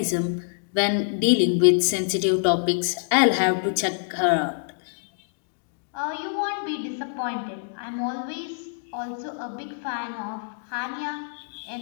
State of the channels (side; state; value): right; silent; digital silence